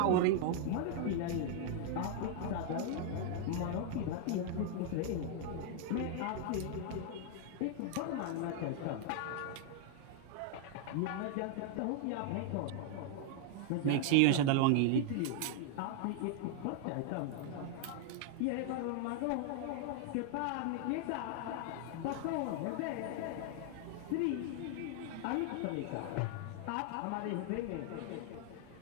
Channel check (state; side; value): different; both; correlation 0.00